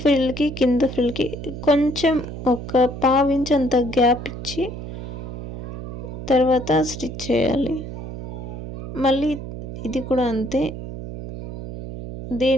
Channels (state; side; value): noise; right; hum, 8 dB below the sound